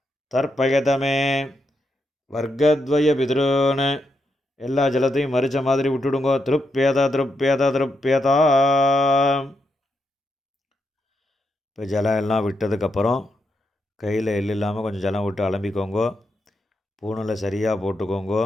தர்ப்பயதமே வர்க்கத்வய பித்ருன். எல்லா ஜலத்தையும் மறிச்ச மாதிரி விட்டுடுங்கோ. திருப்பியத திருப்பியத திருப்பியதா. இப்போ ஜலம் எல்லாம் விட்டதுக்கப்புறம் கையில் எள் இல்லாமல் கொஞ்சம் ஜலம் விட்டு அலம்பிக்கோங்கோ. பூணில் சரியாக போட்டுக்கோங்கோ.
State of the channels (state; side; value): normal; both; correlation 0.82